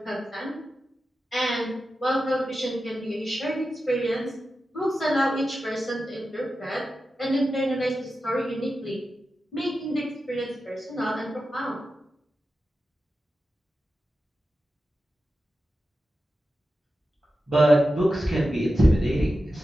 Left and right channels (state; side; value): normal; both; correlation 0.92